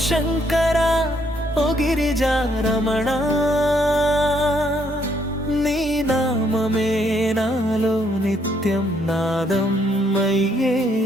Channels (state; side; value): normal; both; correlation 0.70